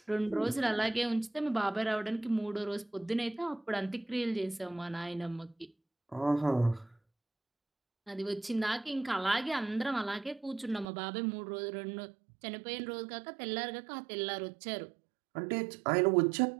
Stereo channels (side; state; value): left; drops out; at 10.9 s